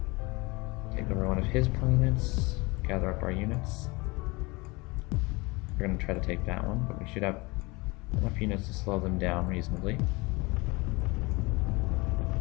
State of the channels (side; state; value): right; quieter; 25.2 dB